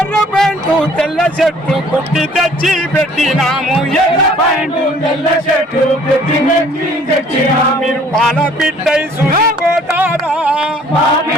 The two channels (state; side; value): normal; both; correlation 0.56